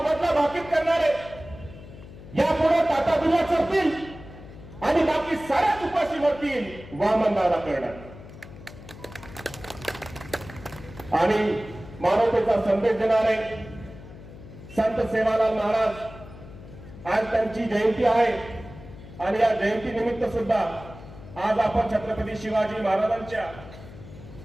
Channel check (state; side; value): noise; left; hum, 16 dB below the sound